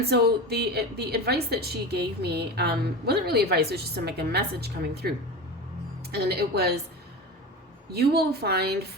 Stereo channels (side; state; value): both; normal; correlation 0.27